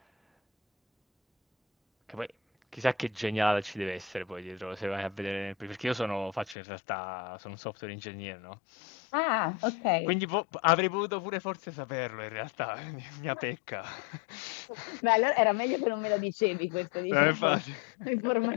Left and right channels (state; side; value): drops out; right; at 6.6 s